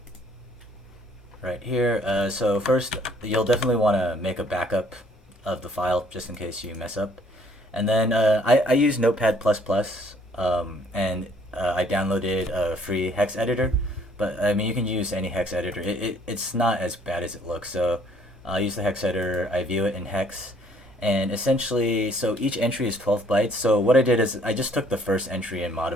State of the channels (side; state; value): both; normal; correlation 0.61